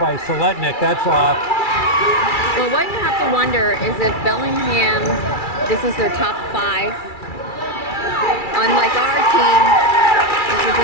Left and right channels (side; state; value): right; late; 2.3 ms